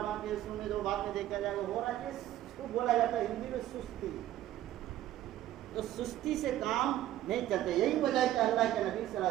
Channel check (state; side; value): quieter; left; 13.4 dB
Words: باقی ہے، سونے دو، بعد میں دیکھا جائے گا، ہو رہا ہے، اس کو بولا جاتا ہے ہندی میں سستی۔ تو سستی سے کام نہیں چلتے، یہی وجہ ہے کہ اللہ کے نبی صلی اللہ